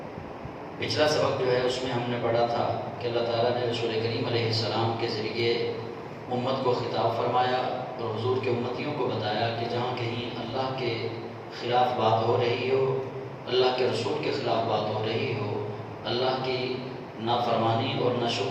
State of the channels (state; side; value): identical; both; correlation 1.00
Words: پچھلا سبق جو ہے اس میں ہم نے پڑھا تھا کہ اللہ تعالیٰ نے رسول کریم علیہ السلام کے ذریعے امت کو خطاب فرمایا اور حضور کے امتیوں کو بتایا کہ جہاں کہیں اللہ کے خلاف بات ہو رہی ہو، اللہ کے رسول کے خلاف بات ہو رہی ہو، اللہ کی نافرمانی اور